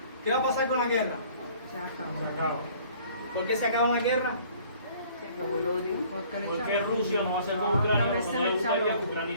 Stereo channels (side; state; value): both; inverted; correlation -0.55